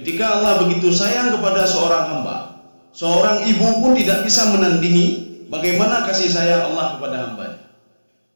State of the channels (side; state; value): both; inverted; correlation -1.00